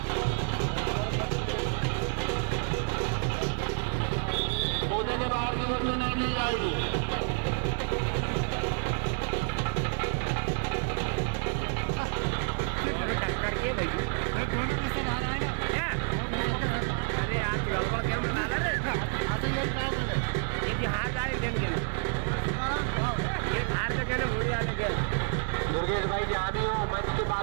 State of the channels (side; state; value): left; silent; 58 dB below the other